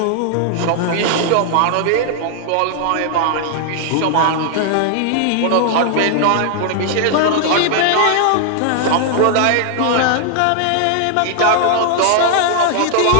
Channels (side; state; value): both; different; correlation 0.00